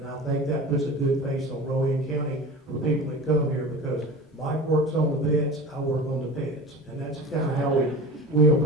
I think that puts a good face on Rowan County for people that come here, because Mike works on the vets, I work on the pets, and that's kind of how we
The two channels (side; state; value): both; normal; correlation 0.34